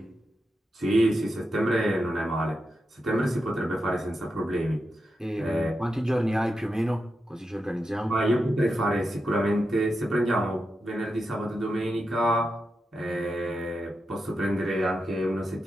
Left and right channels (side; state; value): both; normal; correlation 0.87